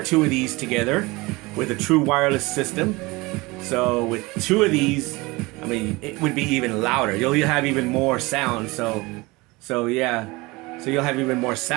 of these together with a true wireless system. So with two of these, I mean, it would be even louder. You'll have even more sound. So yeah, so you'll have even more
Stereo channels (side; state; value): left; quieter; 23.2 dB